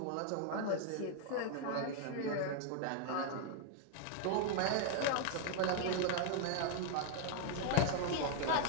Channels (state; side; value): different; both; correlation 0.00